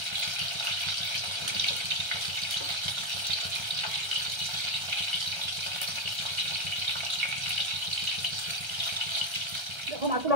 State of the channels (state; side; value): late; left; 1.3 ms